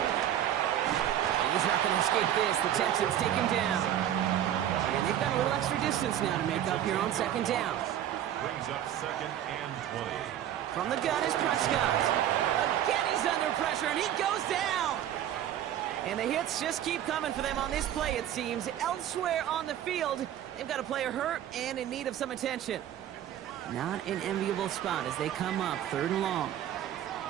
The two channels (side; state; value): left; quieter; 11.1 dB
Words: And he's not going to escape this. The Texans take him down. And they've got a little extra distance now to make up here on 2nd down. Brings up 2nd and 20. From the gun is Prescott. Again, he's under pressure, and he goes down. And the hits just keep coming for them on this play, it seems. Elsewhere on the field, they've got a player hurt and in need of some attention. Not an enviable spot as they come up, 3rd and long.